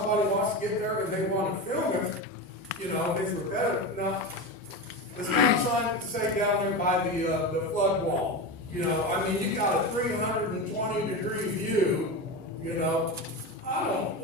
wants to get there and they want to film it, you know, it's repetitive. Now, the stop sign, say down there by the flood wall, you know, I mean, you got a 320-degree view, you know. I don't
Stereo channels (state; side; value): normal; both; correlation 0.21